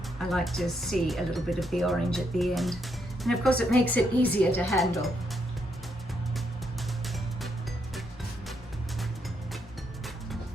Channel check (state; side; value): normal; both; correlation 0.78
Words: I like to see a little bit of the orange at the end. And of course it makes it easier to handle.